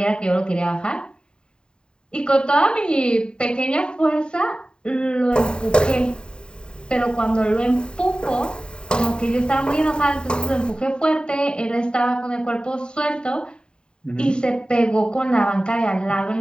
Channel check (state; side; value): late; right; 0.049 ms